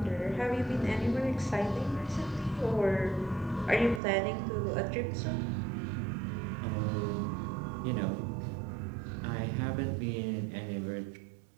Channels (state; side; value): drops out; left; at 4.0 s